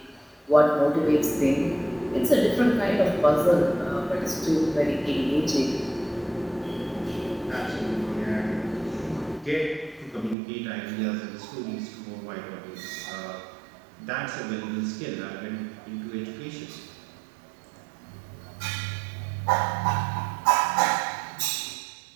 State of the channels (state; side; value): drops out; left; at 10.4 s